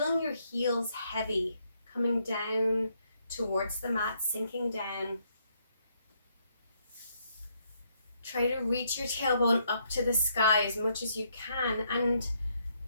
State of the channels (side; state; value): both; inverted; correlation -0.73